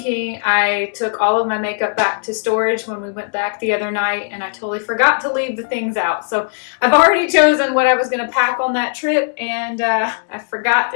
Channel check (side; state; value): right; silent; 67 dB below the other